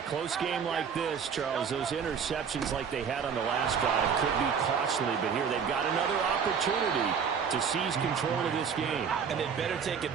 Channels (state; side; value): quieter; left; 6.7 dB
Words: close game like this, Charles, those interceptions like they had on the last drive could be costly, but here they've got another opportunity to seize control of this game. And they'd better take